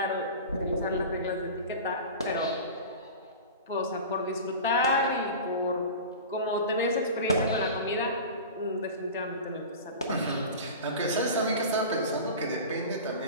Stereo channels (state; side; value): inverted; both; correlation -0.32